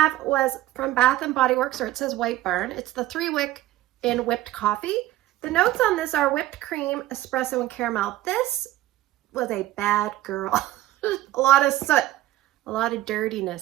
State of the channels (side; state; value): left; quieter; 15.2 dB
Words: was from Bath & Body Works, or it says White Barn. It's the 3-wick in whipped coffee. The notes on this are whipped cream, espresso, and caramel. This was a bad girl. A lot of soot, a lot of